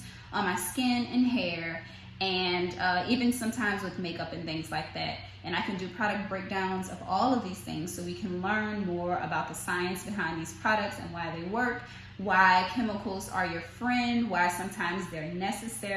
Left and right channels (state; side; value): identical; both; correlation 1.00